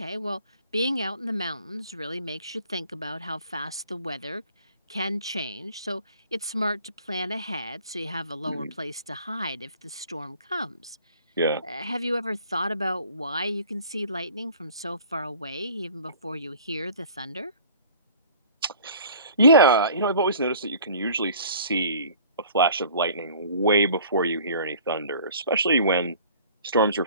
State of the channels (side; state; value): both; inverted; correlation -0.49